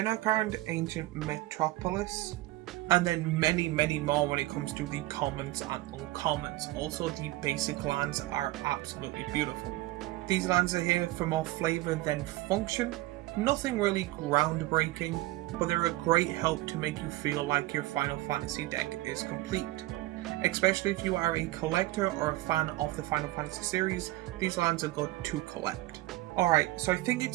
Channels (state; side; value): quieter; left; 17.8 dB